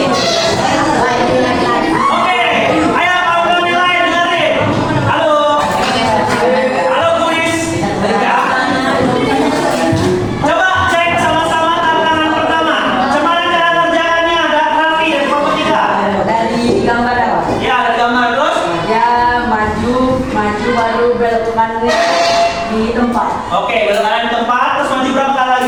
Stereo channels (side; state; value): both; identical; correlation 1.00